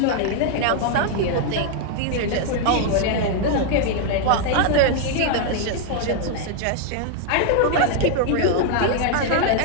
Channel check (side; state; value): both; different; correlation 0.00